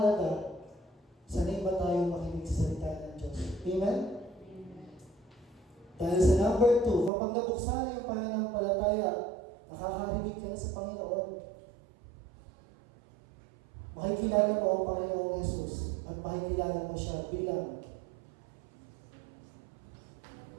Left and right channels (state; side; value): drops out; left; at 7.1 s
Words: sanay ba tayo makinig sa salita ng Diyos? Amen? Dahil sa number 2, kapag nabuksan na yung pananampalataya, nakakarinig ka na sa Panginoon. Makikilala mo ang Panginoong Jesus at makikilala mo siya bilang